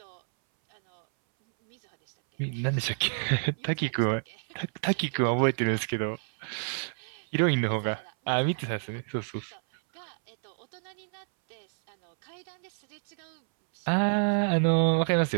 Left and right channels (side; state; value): left; silent; 59 dB below the other